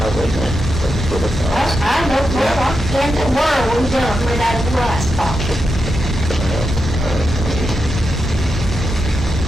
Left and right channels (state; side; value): normal; both; correlation 0.87